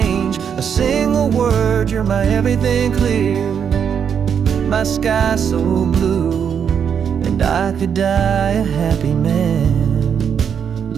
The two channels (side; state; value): left; quieter; 7.6 dB